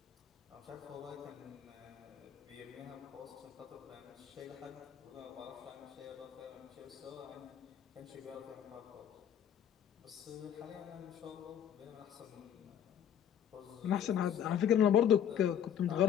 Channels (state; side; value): quieter; right; 9.4 dB